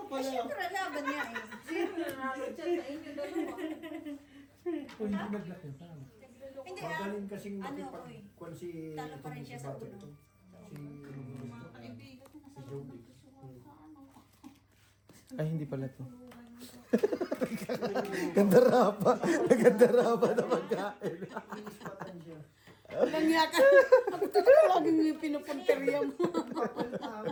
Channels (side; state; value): both; identical; correlation 1.00